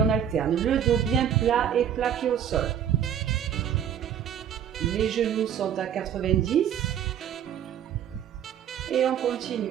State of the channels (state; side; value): quieter; left; 9.1 dB